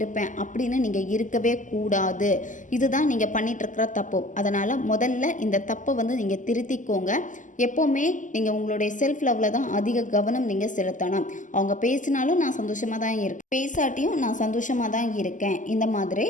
அப்படின்னு நீங்கள் இருக்கவே கூடாது. இதுதான் நீங்கள் பண்ணிகிட்ருக்கிற தப்பு. அதனால் முதல்ல இந்த தப்பை நீங்கள் திருத்திக்கோங்க. எப்போவுமே நீங்கள் உங்களுடைய செல்ஃப் லவ்வில் தான் அதிக கவனம் நீங்கள் செலுத்தணும். அவங்க பேசினாலும் நான் சந்தோஷமாக தான் இருக்கேன், பேசாட்டியும் நான் சந்தோஷமாக தான் இருக்கேன், இந்த மாதிரி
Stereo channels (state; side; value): late; right; 0.37 ms